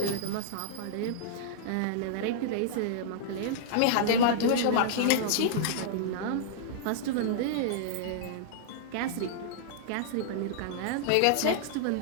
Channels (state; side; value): different; both; correlation -0.02